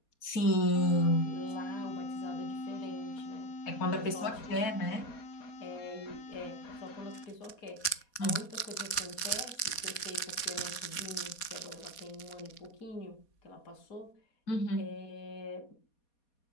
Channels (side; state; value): right; late; 4.2 ms